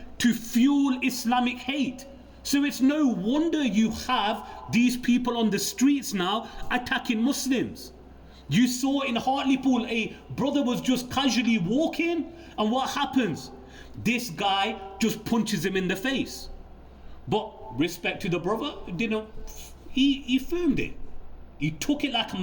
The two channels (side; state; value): both; identical; correlation 1.00